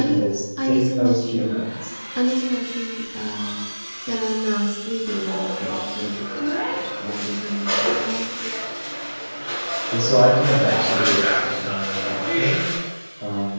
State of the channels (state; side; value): inverted; both; correlation -1.00